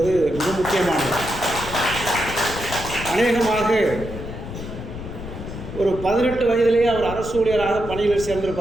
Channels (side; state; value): left; noise; rumble, 10 dB below the sound